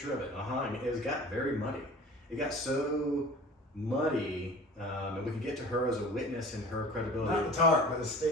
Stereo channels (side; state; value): both; normal; correlation 0.42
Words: of it. I mean, it got very muddy. It got so muddy, and we could get to her as a witness and her credibility. Not the tarp, but the